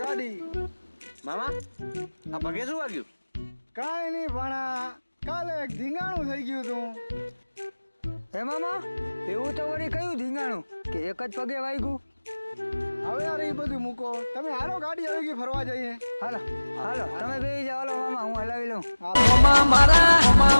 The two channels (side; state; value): both; inverted; correlation -1.00